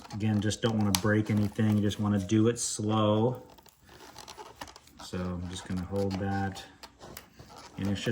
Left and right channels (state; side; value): identical; both; correlation 1.00